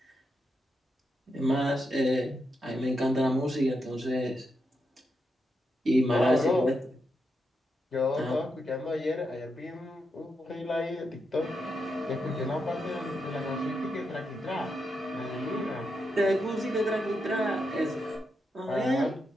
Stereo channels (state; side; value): normal; both; correlation 0.84